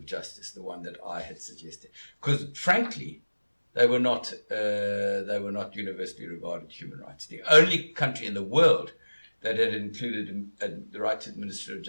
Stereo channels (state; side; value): inverted; both; correlation -1.00